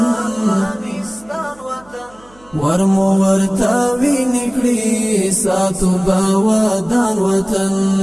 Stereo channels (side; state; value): right; noise; hum, 27 dB below the sound